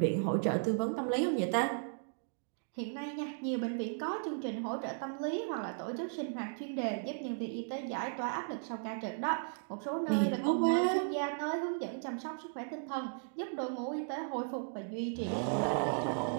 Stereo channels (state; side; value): silent; left; digital silence